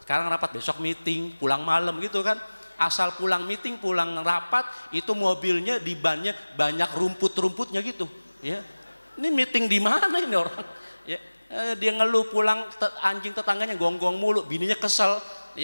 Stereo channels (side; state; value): both; inverted; correlation -1.00